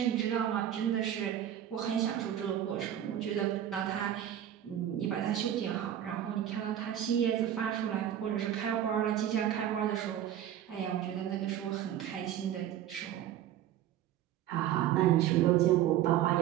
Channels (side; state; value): left; quieter; 11.1 dB